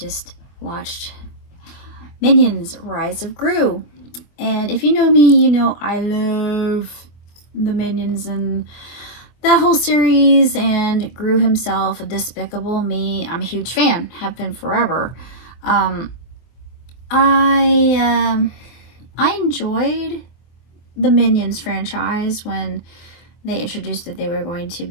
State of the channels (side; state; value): right; late; 24 ms